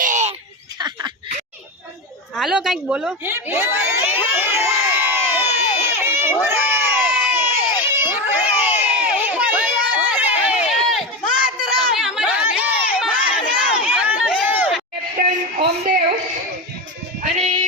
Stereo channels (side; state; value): both; normal; correlation 0.18